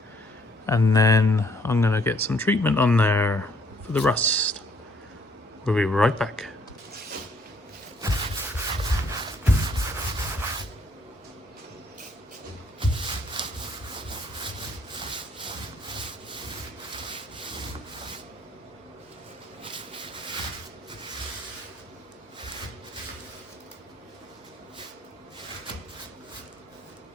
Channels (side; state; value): both; normal; correlation 0.65